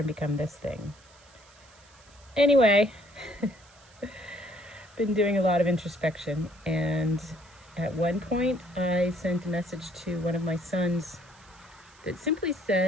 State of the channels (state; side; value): noise; right; hiss, 27 dB below the sound